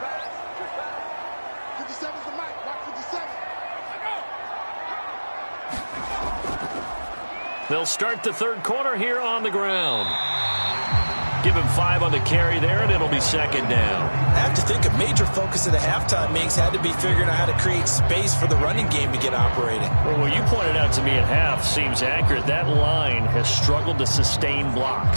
They'll start the third quarter here on the ground. Give him 5 on the carry there, and it'll be second down. I have to think a major focus of the halftime meetings had to be figuring out how to create space for the running game to get operating. Well, what you pointed out to me at half seems accurate. That line has struggled to sustain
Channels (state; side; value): inverted; both; correlation -1.00